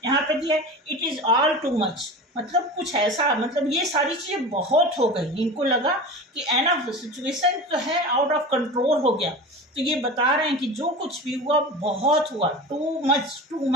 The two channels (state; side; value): normal; both; correlation 0.32